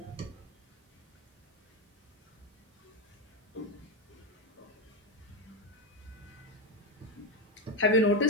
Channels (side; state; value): both; normal; correlation 0.11